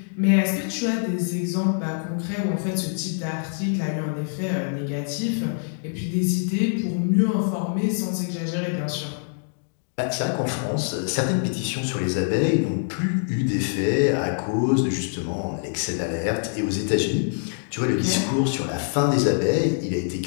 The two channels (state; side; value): silent; right; digital silence